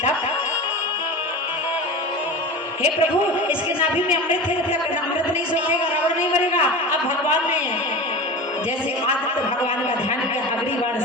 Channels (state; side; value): normal; both; correlation 0.31